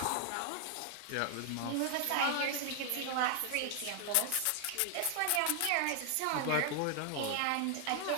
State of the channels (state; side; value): different; both; correlation 0.00